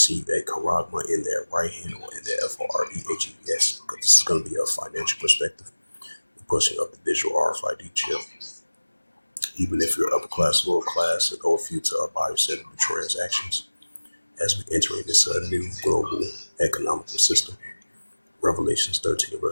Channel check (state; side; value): inverted; both; correlation -1.00